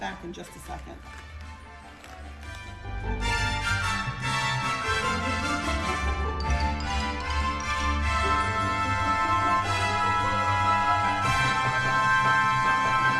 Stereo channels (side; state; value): both; identical; correlation 1.00